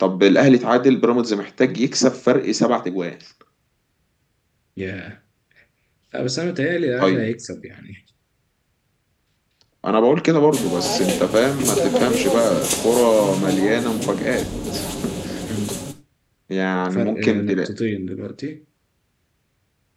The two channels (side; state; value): both; identical; correlation 1.00